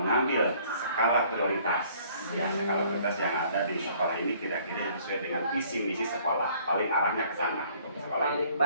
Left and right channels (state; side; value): inverted; both; correlation -0.58